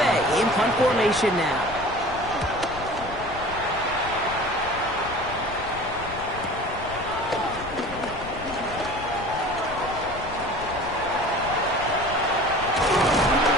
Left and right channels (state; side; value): noise; left; rumble, 13 dB below the sound